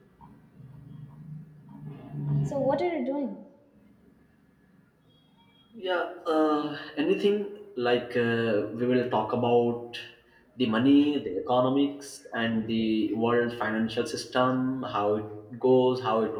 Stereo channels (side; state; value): both; identical; correlation 1.00